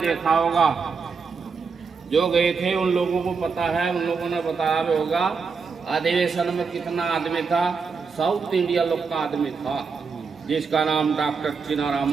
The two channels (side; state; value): left; quieter; 5.2 dB